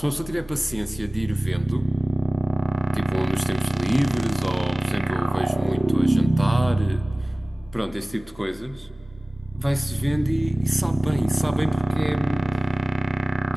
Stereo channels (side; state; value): both; normal; correlation 0.98